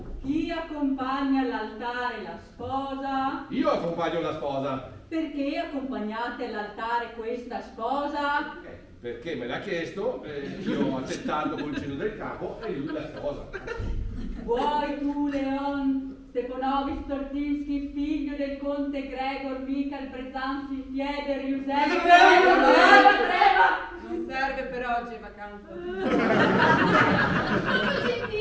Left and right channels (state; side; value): identical; both; correlation 1.00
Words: Chi accompagna all'altare la sposa? Io accompagno la sposa. Perché accompagnate all'altare questa sposa? Perché me l'ha chiesto, io ho accettato col cenno del capo e lui la sposa. Vuoi tu, Leon Stepanovich Tortinski, figlio del conte Gregor Michael Brezanski Fieder Giuseppe Treva? Non serve per oggi, è vacanza.